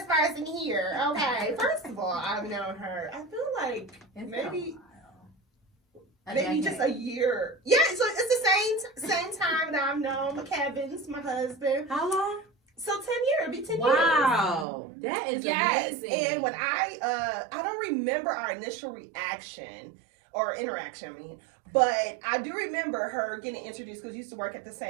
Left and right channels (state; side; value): drops out; left; at 14.7 s